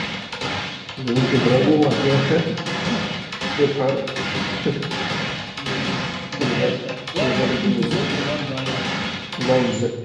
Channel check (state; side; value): identical; both; correlation 1.00